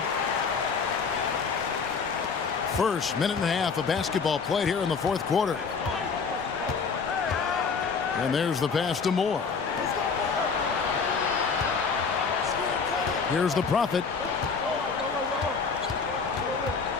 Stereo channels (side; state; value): right; quieter; 5.4 dB